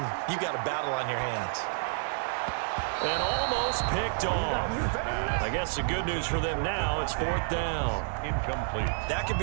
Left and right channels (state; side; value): silent; left; 58 dB below the other